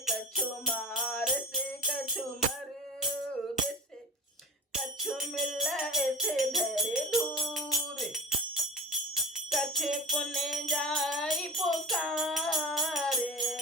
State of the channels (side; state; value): both; normal; correlation 0.30